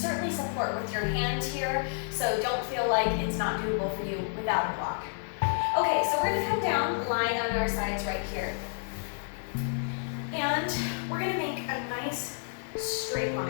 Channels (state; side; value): silent; right; 58 dB below the other